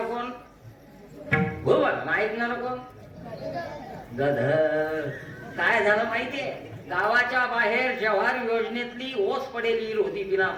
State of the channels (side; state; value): both; identical; correlation 1.00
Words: कोण? घुबड. ऐकणार कोण? गध. काय झालं माहितीये? गावाच्या बाहेर जव्हार योजनेतली ओस पडेली होती बिना